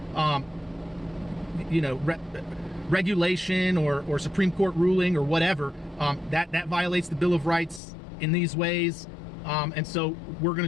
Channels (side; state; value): right; drops out; at 7.8 s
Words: you know, regulation or Supreme Court ruling or whatever. That violates the Bill of Rights in these ways. And so we're going